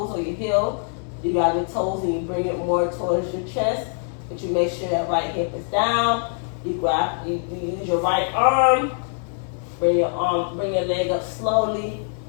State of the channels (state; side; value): silent; right; 59 dB below the other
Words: or your heel. You grab your toes and you bring it more towards your chest. But you make sure that right hip is down. You use your right arm. Bring your leg up slowly,